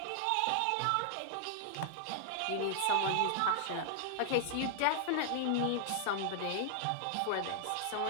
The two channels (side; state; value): both; different; correlation 0.00